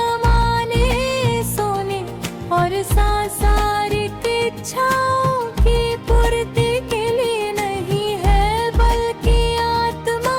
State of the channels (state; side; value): identical; both; correlation 1.00